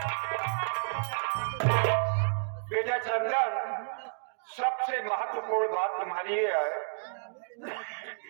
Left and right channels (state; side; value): silent; left; digital silence